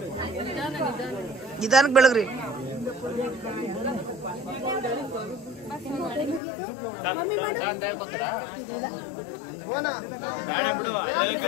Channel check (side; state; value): right; drops out; at 6.4 s